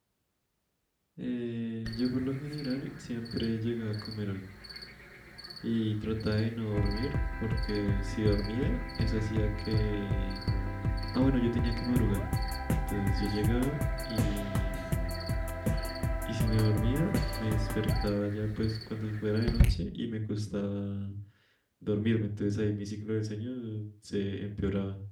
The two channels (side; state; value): both; identical; correlation 1.00